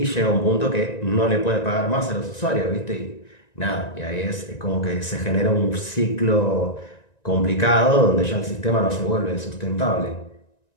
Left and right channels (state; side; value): late; right; 1.9 ms